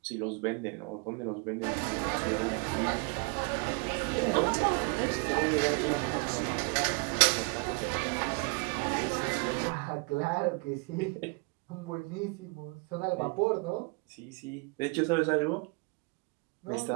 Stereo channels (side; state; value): left; quieter; 31.5 dB